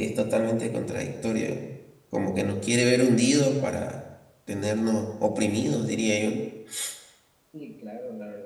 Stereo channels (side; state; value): both; identical; correlation 1.00